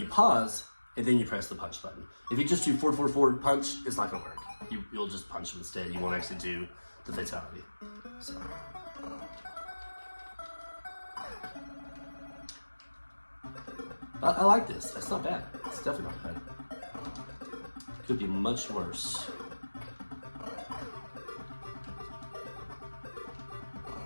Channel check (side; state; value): both; inverted; correlation -1.00